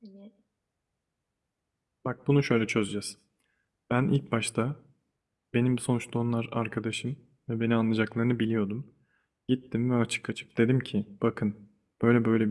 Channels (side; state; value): both; identical; correlation 1.00